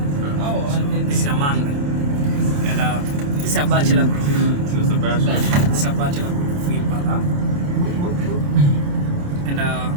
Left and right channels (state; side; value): late; left; 28 ms